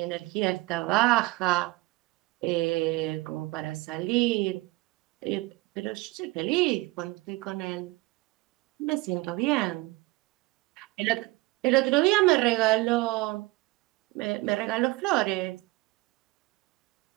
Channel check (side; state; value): left; quieter; 21.5 dB